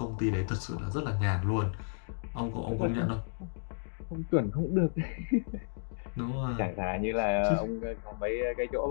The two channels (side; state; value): right; silent; digital silence